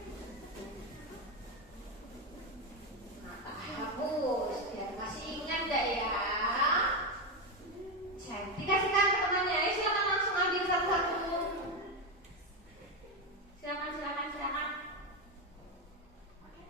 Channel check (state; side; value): normal; both; correlation 0.10